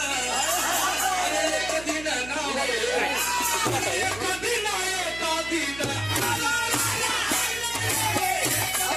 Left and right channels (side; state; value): right; noise; hum, 15 dB below the sound